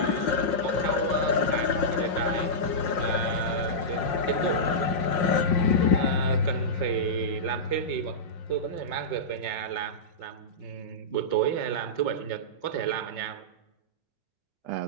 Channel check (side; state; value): right; late; 5.6 ms